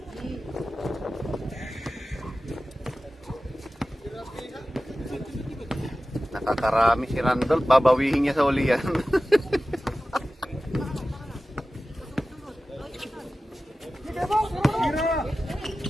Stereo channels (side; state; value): both; normal; correlation 0.95